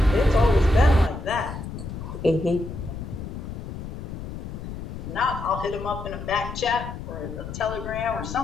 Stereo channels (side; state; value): left; noise; rumble, 8 dB below the sound